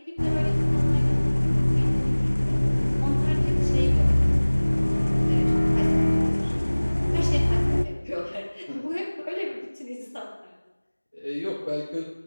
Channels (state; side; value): inverted; both; correlation -1.00